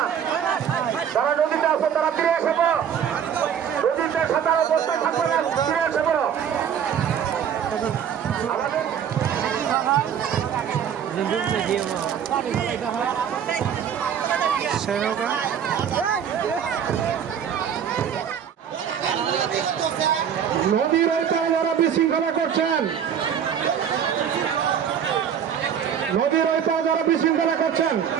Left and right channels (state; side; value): quieter; left; 8.4 dB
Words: যারা নদীতে আছে তারা ফিরে এসে বলো। নদীতে সাঁতার অবস্থায় থাকবে না, ফিরে এসে বলো। নদীর ওই তারা বিশৃঙ্খলা করছেন, নদীর ওই তারা বিশৃঙ্খলা করছেন।